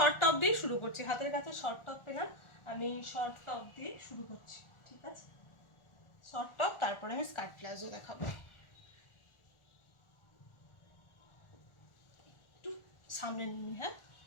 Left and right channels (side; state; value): right; late; 1.4 ms